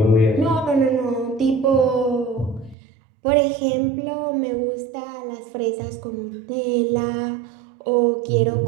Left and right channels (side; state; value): left; drops out; at 2.8 s